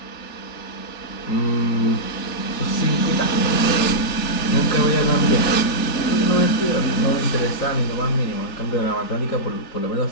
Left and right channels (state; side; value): late; right; 4.1 ms